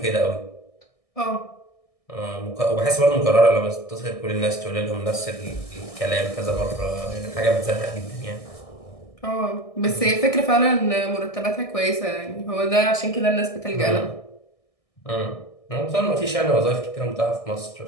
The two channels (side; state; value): right; late; 1.6 ms